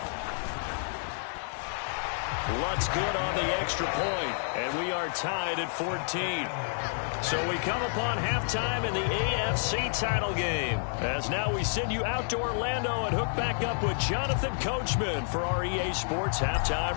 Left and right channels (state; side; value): silent; right; digital silence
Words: Lutt's good on the extra point, and we are tied at 14. So we come upon halftime in the AFC title game, as now we send you out to Orlando and hook back up with Jonathan Coachman for our EA Sports Halftime